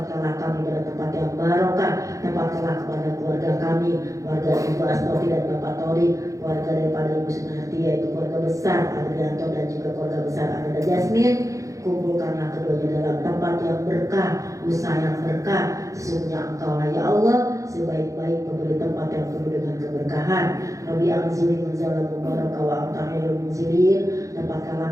kami pada tempat yang barokah. Tempatkanlah kepada keluarga kami, keluarga Ibu Astofi dan Bapak Tori, keluarga daripada Ibu Sunarti, yaitu keluarga besar Adrianto dan juga keluarga besar Anda dan Jasmine. Kumpulkanlah keduanya dalam tempat yang berkah, usaha yang berkah. Sesungguhnya Engkau lah ya Allah sebaik-baik pemberi tempat yang penuh dengan keberkahan. Rabbi anzilni munzalan mubaraka wa anta khairul munzilin.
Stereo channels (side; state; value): left; late; 0.16 ms